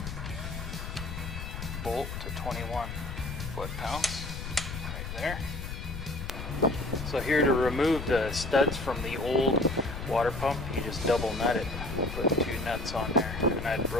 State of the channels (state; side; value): noise; left; rumble, 7 dB below the sound